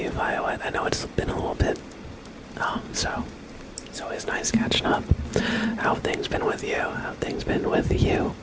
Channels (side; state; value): both; identical; correlation 1.00